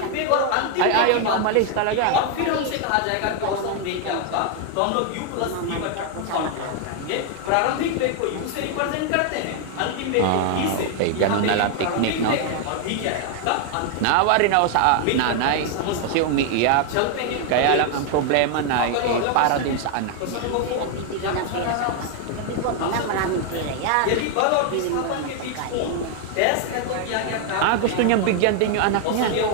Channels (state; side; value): different; both; correlation 0.00